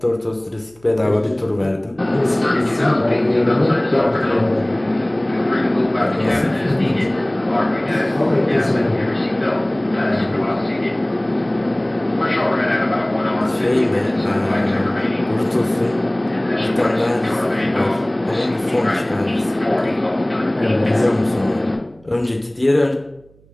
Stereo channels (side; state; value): right; noise; hum, 29 dB below the sound